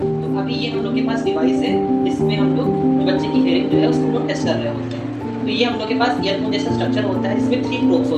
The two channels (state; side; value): identical; both; correlation 1.00